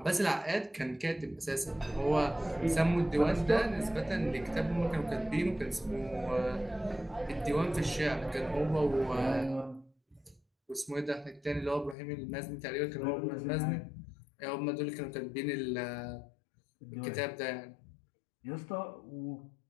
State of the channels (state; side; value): drops out; right; at 12.0 s